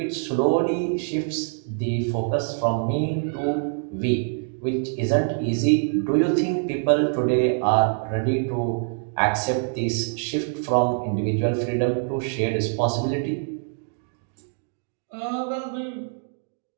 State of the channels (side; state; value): left; silent; 61 dB below the other